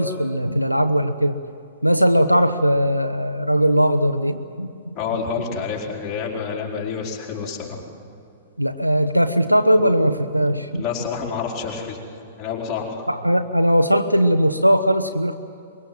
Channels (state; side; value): inverted; both; correlation -0.86